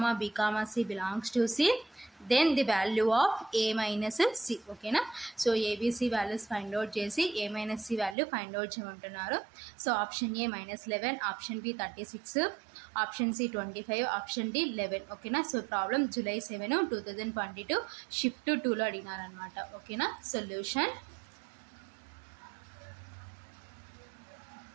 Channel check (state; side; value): drops out; left; at 8.2 s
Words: b, c belongs to c, then the value of a minus c. Okay na? So abc values find out chesi a minus c value find out cheyamantunnaru. So option A -11, option B 36, option C 25, option D 11. Okay na? So problem July 7, 2022 shift 2 lo అడిగినారు అన్నమాట. Okay na? Solution,